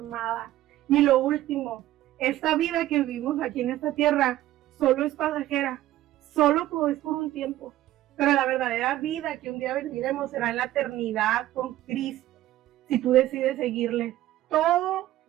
Y lo último, esta vida que vivimos aquí en esta tierra solo es pasajera. Solo es por un tiempo, pero la verdadera vida que un día viviremos será en la eternidad con Cristo. Si tú decides seguirle, todo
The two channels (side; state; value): left; quieter; 14.6 dB